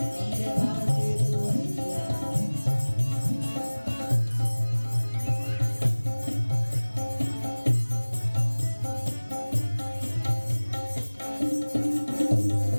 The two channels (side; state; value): both; inverted; correlation -1.00